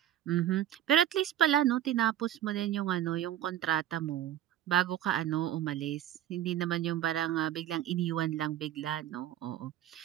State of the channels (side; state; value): left; quieter; 11.8 dB